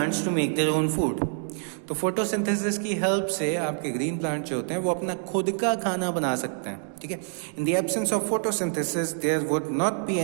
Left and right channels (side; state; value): left; silent; 60 dB below the other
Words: to make their own food. तो फोटोसिंथेसिस की हेल्प से आपके ग्रीन प्लांट जो होते हैं वो अपना खुद का खाना बना सकते हैं। ठीक है, in the absence of photosynthesis there would not be